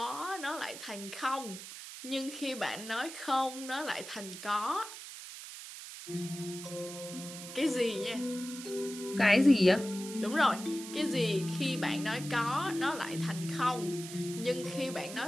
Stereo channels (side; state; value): right; noise; hiss, 11 dB below the sound